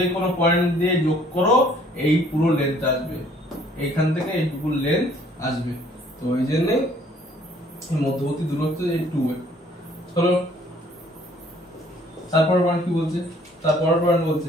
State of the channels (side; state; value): both; normal; correlation 0.59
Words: কোনো পয়েন্ট দিয়ে যোগ করো, এই পুরো লেন্থ আসবে, এইখান থেকে এইটুকু লেন্থ আসবে। তো ওই জন্য মধ্যবর্তী দূরত্ব এই 2A। চলো তারপর পয়েন্ট কি বলছে, তারপর পয়েন্ট